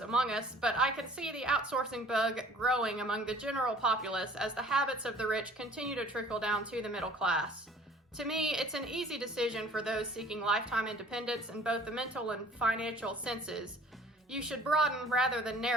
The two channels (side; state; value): both; normal; correlation 0.51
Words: us, but I can see the outsourcing bug growing among the general populace as the habits of the rich continue to trickle down to the middle class. To me, it's an easy decision for those seeking lifetime independence in both the mental and financial senses. You should broaden rather than